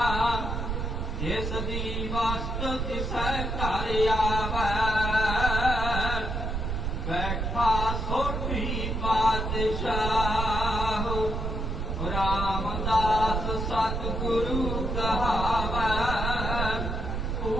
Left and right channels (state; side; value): noise; right; rumble, 2 dB below the sound